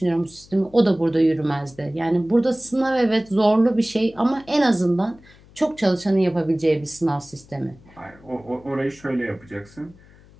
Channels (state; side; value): noise; left; hum, 25 dB below the sound